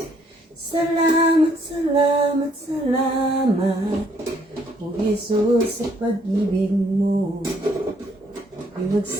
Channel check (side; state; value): both; normal; correlation 0.67